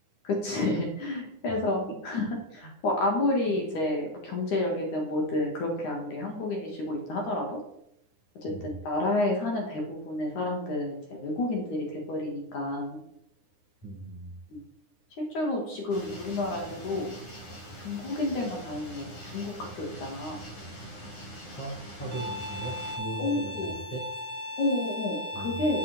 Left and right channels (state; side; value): late; right; 9.7 ms